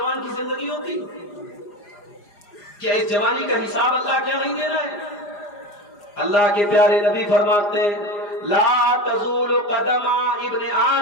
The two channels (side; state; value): right; late; 4.9 ms